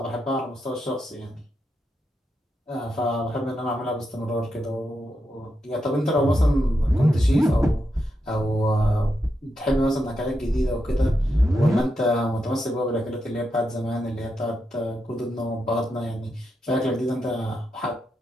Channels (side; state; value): both; normal; correlation 0.85